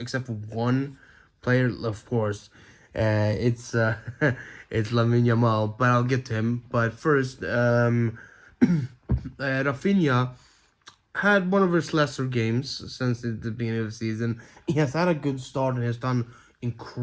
for one player, of course. It's it's Lamine Yamal, but I'll get to him. But first, Rafinha had one of his lesser games since the beginning of the season. He has had a good start and has done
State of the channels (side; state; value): both; identical; correlation 1.00